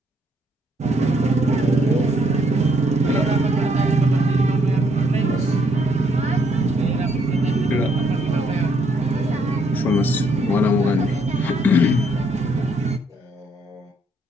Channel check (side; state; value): both; normal; correlation 0.70